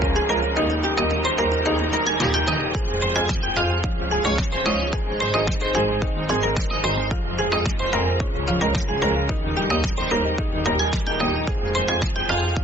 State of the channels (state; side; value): normal; both; correlation 0.66